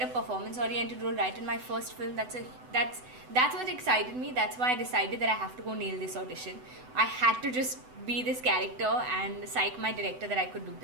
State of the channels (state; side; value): late; left; 8.0 ms